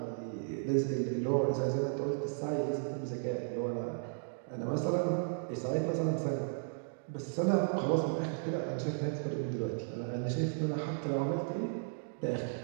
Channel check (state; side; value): silent; left; digital silence